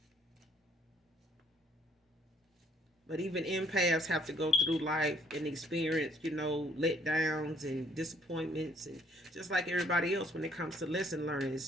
But even empaths have to go through life and experience, letdowns and disappointments, and just like everybody else when it comes to lesson learning.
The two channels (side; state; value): both; normal; correlation 0.64